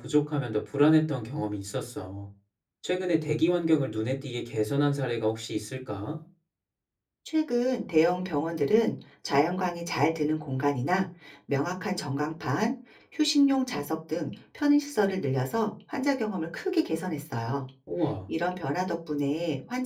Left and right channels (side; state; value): both; identical; correlation 1.00